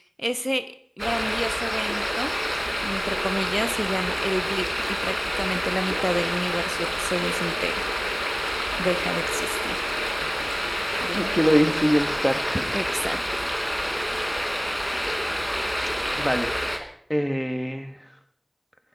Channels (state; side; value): identical; both; correlation 1.00